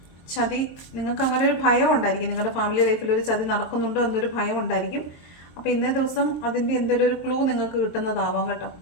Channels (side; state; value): right; late; 23 ms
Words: ചതി. നിങ്ങൾക്ക് അങ്ങനെ ഒരു ഭയം ഉണ്ടായിരിക്കും, നിങ്ങളുടെ ഫാമിലി ലൈഫിൽ ഒരു ചതി നടക്കുന്നുണ്ടോ എന്നൊരു ഭയം ഉണ്ടായിരിക്കും. അപ്പോൾ ഇന്നേ ദിവസം അതിൻ്റെ എന്തെങ്കിലും ഒരു ക്ലൂ നിങ്ങൾക്ക് കിട്ടുന്നതാവാം കേട്ടോ.